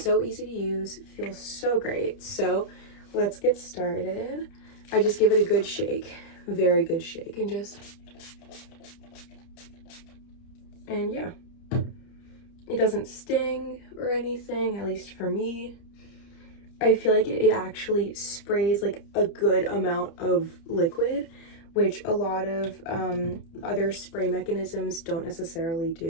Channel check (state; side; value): late; right; 30 ms